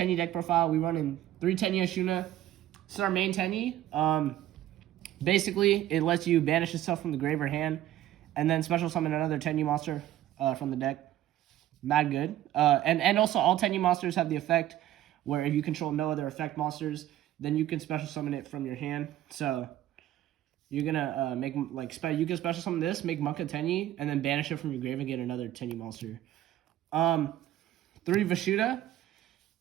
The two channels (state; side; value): quieter; left; 13.2 dB